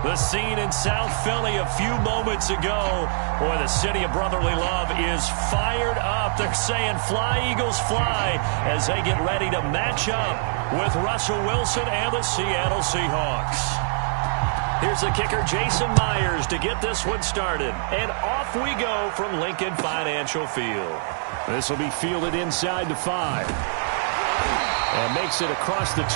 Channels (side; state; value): left; silent; digital silence